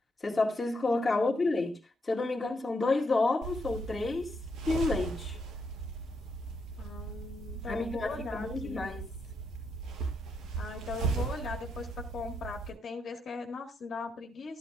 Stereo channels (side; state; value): both; normal; correlation 0.79